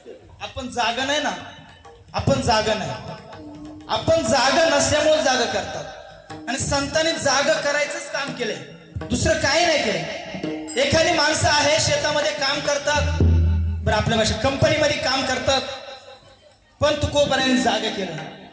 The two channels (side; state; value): both; identical; correlation 1.00